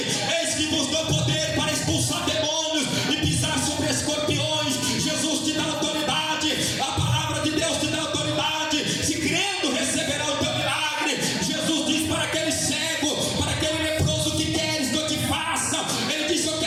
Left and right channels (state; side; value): identical; both; correlation 1.00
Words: Eis que vos dou poder para expulsar demônios e pisar sobre escorpiões. Jesus te dá autoridade. A palavra de Deus te dá autoridade. Se crendo, receberá o teu milagre. Jesus diz para aquele cego, para aquele leproso: que queres que eu te faça? Ele disse: eu